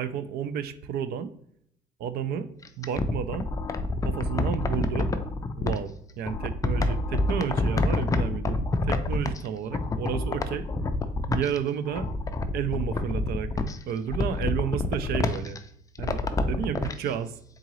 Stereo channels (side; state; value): both; normal; correlation 0.59